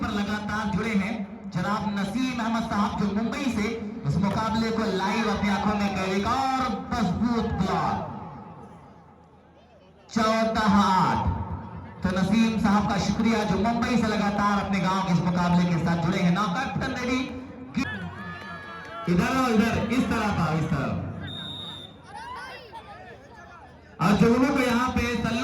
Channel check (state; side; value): identical; both; correlation 1.00